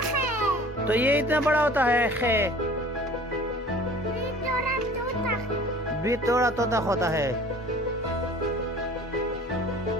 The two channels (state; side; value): normal; both; correlation 0.47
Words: तो ये इतना बड़ा होता है खे? भी थोड़ा तोता होता है।